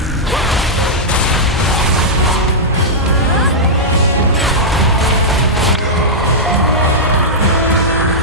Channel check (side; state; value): both; normal; correlation -0.09